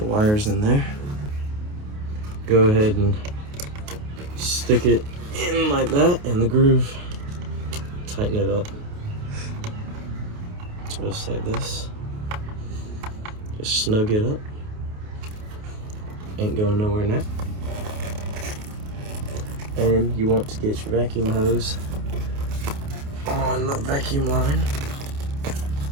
wires in there. Go ahead and stick it in like that in the groove. Tighten it up. Just like this. Just snug it up. Ain't going nowhere now. And you want to get your vacuum hose on the vacuum line.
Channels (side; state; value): left; late; 28 ms